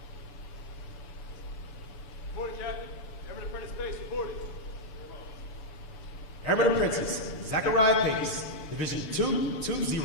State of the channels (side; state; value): right; late; 6.7 ms